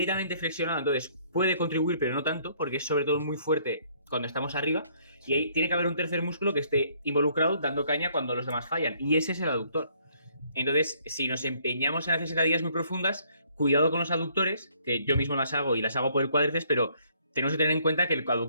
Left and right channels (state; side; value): inverted; both; correlation -0.64